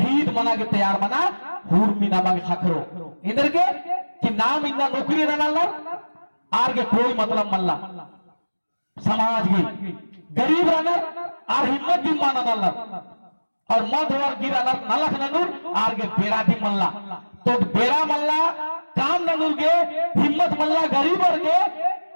मना के तैयार मना हूर मी नामा के खाखरो इधर के कि नाम इन्ना नौकरी रहना आर के कोई मतलब मल्ला समाज की गरीब रहना आर हिम्मत दी माना नल्ला और मध और गिरा नलख ननूर आर के बेरा दी मल्ला तो बेरा मल्ला काम ननूर के हिम्मत मल्ला गरीब और के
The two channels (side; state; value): both; inverted; correlation -1.00